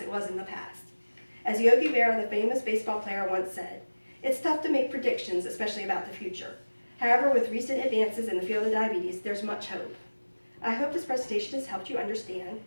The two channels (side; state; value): both; inverted; correlation -1.00